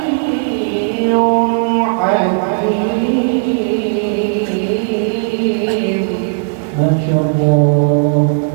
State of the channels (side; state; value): left; silent; digital silence